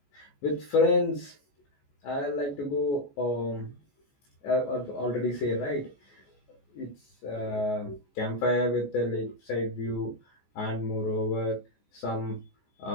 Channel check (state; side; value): late; right; 14 ms